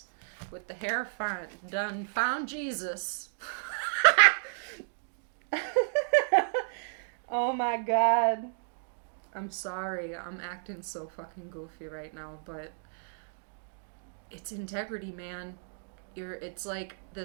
with the hair done found Jesus. Oh my God. I'm sorry. I'm acting so fucking goofy right now, but it's integrity, man. It's like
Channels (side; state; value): left; silent; digital silence